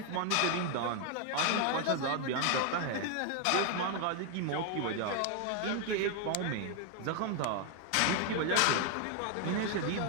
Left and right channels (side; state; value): both; different; correlation 0.00